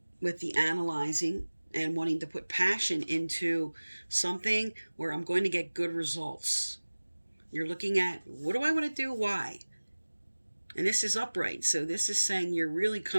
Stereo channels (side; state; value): both; inverted; correlation -1.00